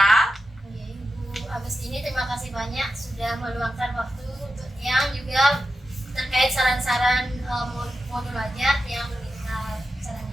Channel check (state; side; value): normal; both; correlation 0.91